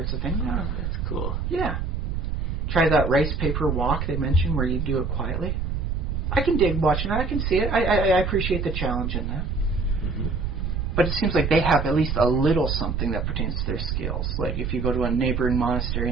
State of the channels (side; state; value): right; noise; rumble, 1 dB below the sound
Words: of things. Oh, that's cool. Yeah. Try that rice paper walk they mentioned where you do it quietly. I can dig watching that. I can see it. I appreciate the challenge in that. Mm-hmm. But it seems like they have at least a little something that pertains to their skills. Like if you go to a neighboring monastery